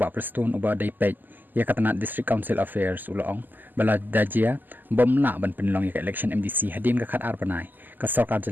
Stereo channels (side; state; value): left; late; 0.088 ms